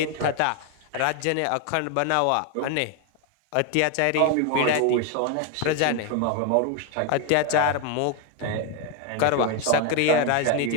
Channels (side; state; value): both; different; correlation 0.01